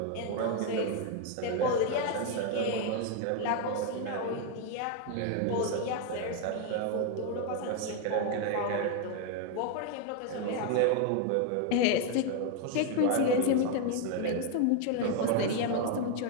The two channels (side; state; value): both; different; correlation 0.01